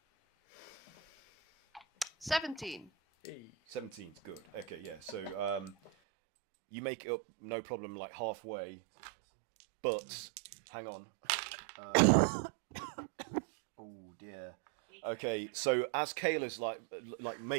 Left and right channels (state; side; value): drops out; left; at 5.9 s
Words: 17. 17's good. Okay, yeah. So you make it up, no problem, halfway. But hang on. Oh dear. Okay, so as Kayla's